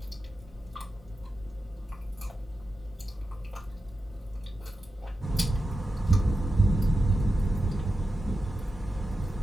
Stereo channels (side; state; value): both; normal; correlation 0.91